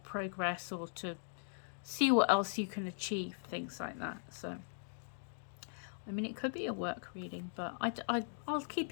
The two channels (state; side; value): silent; right; digital silence